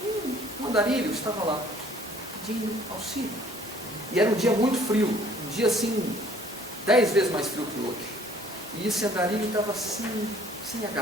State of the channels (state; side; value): normal; both; correlation 0.56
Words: uma Andarilho estava lá, pedindo auxílio. E era um dia muito frio, um dia assim, 10 vezes mais frio que hoje. E esse andarilho estava assim, sem